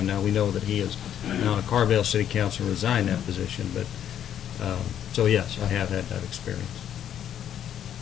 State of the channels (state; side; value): quieter; right; 10.0 dB